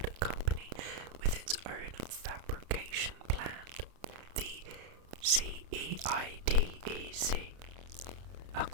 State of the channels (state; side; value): late; left; 32 ms